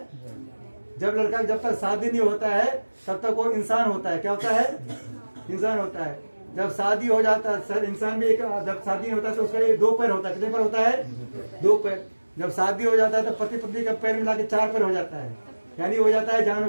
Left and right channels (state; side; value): inverted; both; correlation -1.00